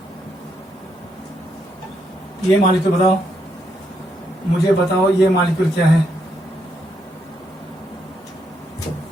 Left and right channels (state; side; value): normal; both; correlation 0.77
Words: ये मॉलिक्यूल बताओ, मुझे बताओ ये मॉलिक्यूल क्या है।